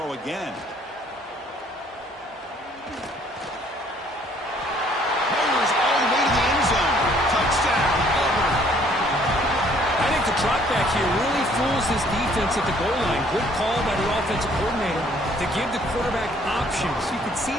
again. Fires all the way to the end zone. Touchdown, Auburn. I think the drop back here really fools this defense at the goal line. Good call by the offensive coordinator to give the quarterback options. You could see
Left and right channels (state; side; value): normal; both; correlation 0.61